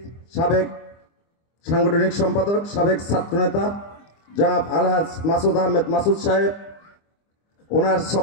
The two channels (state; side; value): late; right; 25 ms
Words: সাবেক সাংগঠনিক সম্পাদক, সাবেক ছাত্রনেতা জনাব আলহাজ মাসুদ আহমেদ মাসুদ সাহেব। ওনার